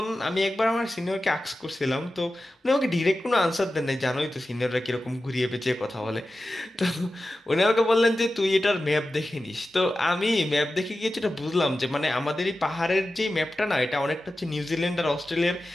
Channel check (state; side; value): normal; both; correlation 0.93